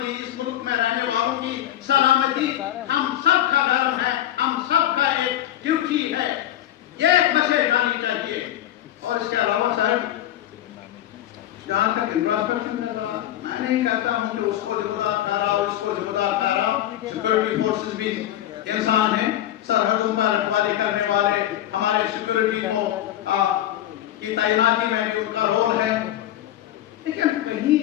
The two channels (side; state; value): right; quieter; 12.8 dB